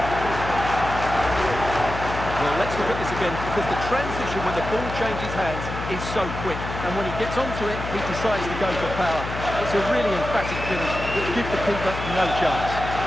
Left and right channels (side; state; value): left; noise; hum, 7 dB below the sound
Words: Well, let's look at this again, because the transition when the ball changes hands is so quick. And when he gets onto it, he decides to go for power. It's a really emphatic finish that gives the keeper no chance.